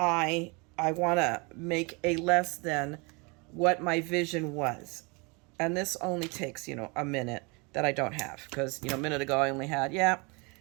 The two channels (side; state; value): left; quieter; 29.7 dB